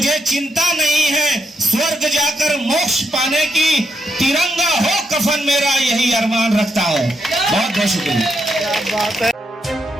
चिंता नहीं है स्वर्ग जाकर मोक्ष पाने की, तिरंगा हो कफन मेरा यही अरमान रखता हूं। बहुत बहुत शुक्रिया।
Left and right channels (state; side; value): normal; both; correlation 0.80